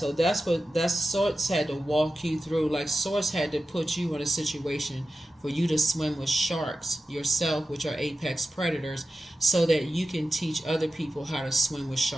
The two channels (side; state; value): both; normal; correlation 0.92